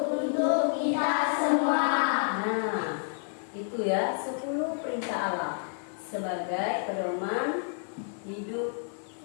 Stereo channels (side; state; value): right; silent; 58 dB below the other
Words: untuk kita semua. Nah, itu ya 10 perintah Allah sebagai pedoman hidup